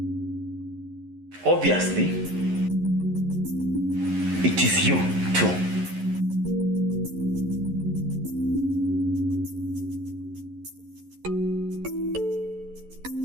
Obviously, it is you too.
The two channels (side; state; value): left; late; 11 ms